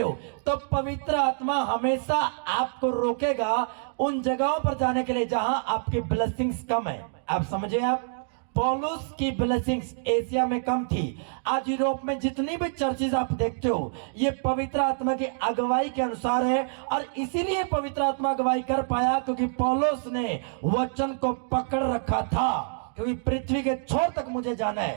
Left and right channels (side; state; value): left; silent; digital silence